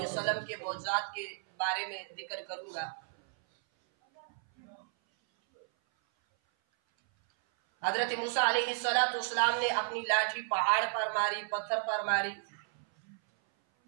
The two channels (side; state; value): left; silent; 56 dB below the other